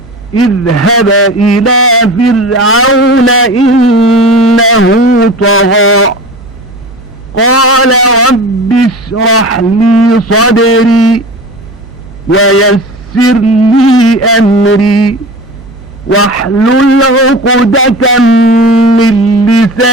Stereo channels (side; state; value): both; normal; correlation 0.34